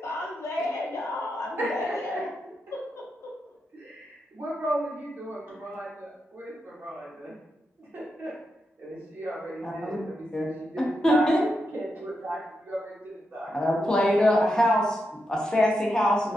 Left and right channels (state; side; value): normal; both; correlation 0.85